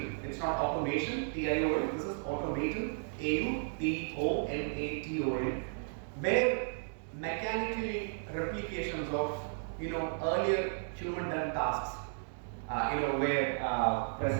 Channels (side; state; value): left; silent; digital silence